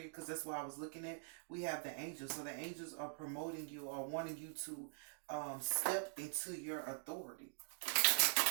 because that's what I was looking at. We have the angels. So the angels are promoting you or wanting you to step into your authority.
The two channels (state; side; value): silent; left; digital silence